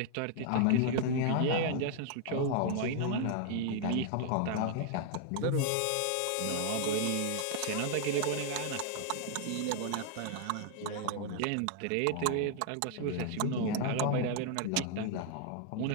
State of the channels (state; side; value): different; both; correlation 0.00